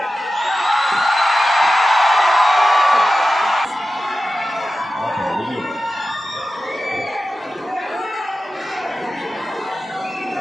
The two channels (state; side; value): normal; both; correlation 0.94